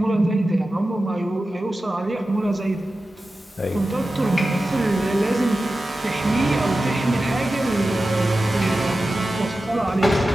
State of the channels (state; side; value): normal; both; correlation 0.94